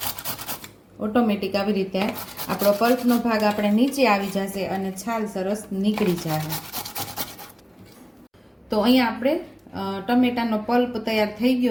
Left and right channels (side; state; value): both; identical; correlation 1.00